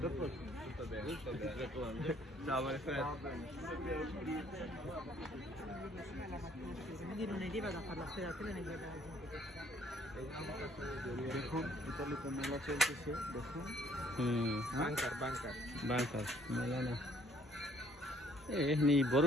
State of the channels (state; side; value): normal; both; correlation 0.62